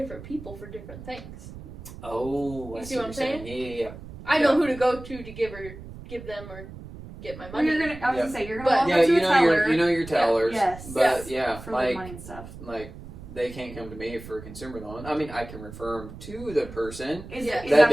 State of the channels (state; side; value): noise; right; rumble, 14 dB below the sound